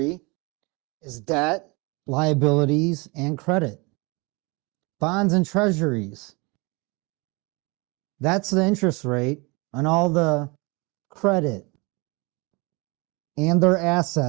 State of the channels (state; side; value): quieter; left; 27.9 dB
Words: is debt, liabilities, and credit. Bonds and treasuries, that's the interest rate on all the credit and their